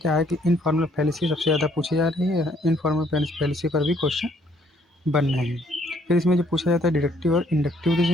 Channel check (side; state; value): both; normal; correlation 0.65